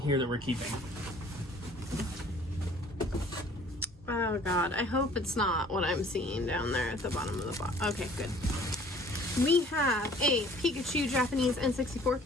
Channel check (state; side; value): normal; both; correlation 0.53